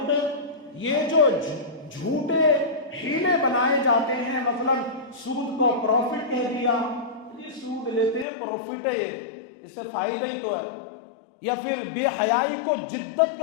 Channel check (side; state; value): right; drops out; at 8.2 s